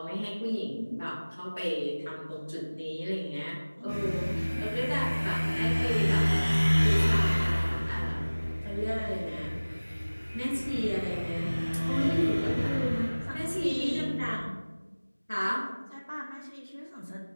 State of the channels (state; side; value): inverted; both; correlation -1.00